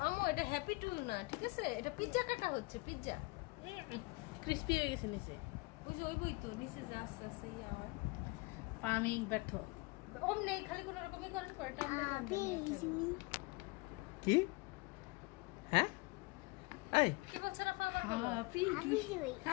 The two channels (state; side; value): quieter; right; 25.3 dB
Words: আমু এটা হ্যাপি টু না, ঠিক আছে? এটা পিজ্জা কাটা হচ্ছে, পিজ্জা। ক্রিস্পি হয়ে গেছে নিচে। ওই যে ওই বই তো নিচে যা আস্তে আস্তে ইয়ে হয়। আমি ব্যর্থ। ওম নেই, খালি কোনো রকমই করেন করে টানতে টানতে নিয়ে ফেলো। কি হ্যাঁ এই কি বলছে না ফাবার বলো? Happy